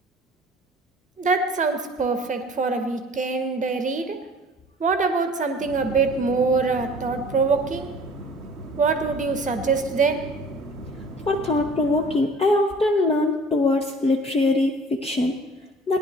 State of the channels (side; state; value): both; normal; correlation 0.48